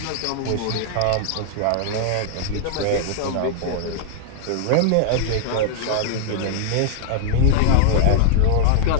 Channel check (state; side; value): different; both; correlation -0.01